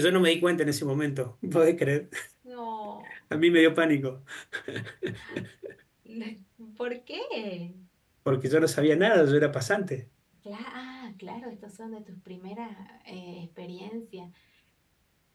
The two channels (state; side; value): identical; both; correlation 1.00